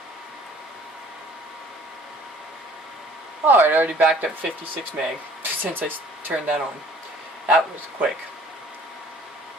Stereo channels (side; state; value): both; normal; correlation 0.53